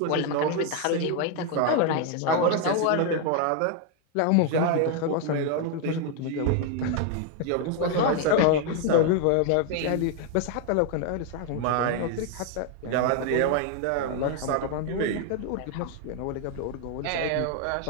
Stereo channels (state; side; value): different; both; correlation 0.01